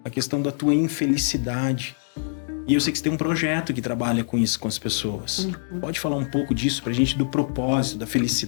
a questão da tua infelicidade. E eu sei que você tem um projeto que trabalha com isso com as pessoas. Pode falar um pouco disso pra gente, do propósito, da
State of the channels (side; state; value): right; silent; digital silence